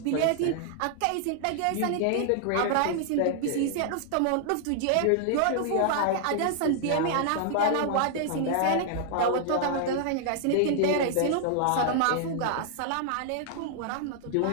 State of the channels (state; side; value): different; both; correlation -0.01